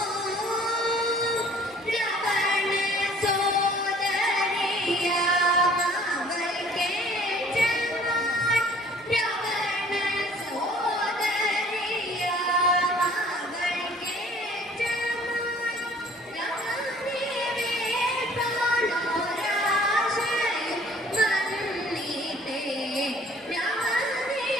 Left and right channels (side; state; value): both; normal; correlation 0.54